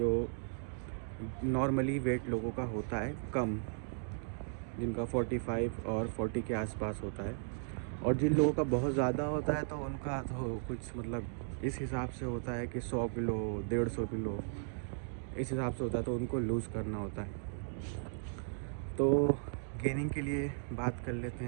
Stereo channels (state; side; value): silent; left; digital silence